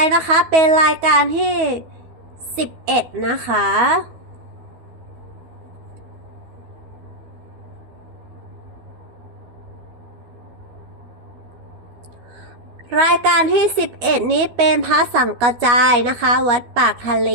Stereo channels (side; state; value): left; late; 12 ms